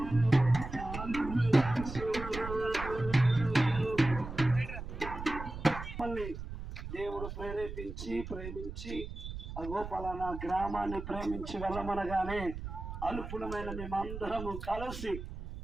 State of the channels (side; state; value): right; noise; rumble, 9 dB below the sound